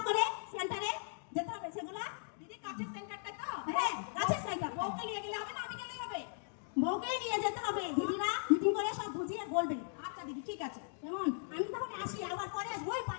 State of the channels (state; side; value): silent; right; digital silence